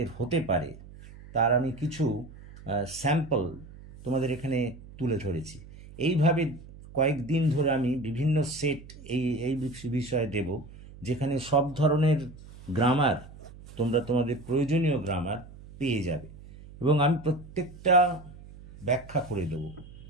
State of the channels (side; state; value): right; noise; hum, 18 dB below the sound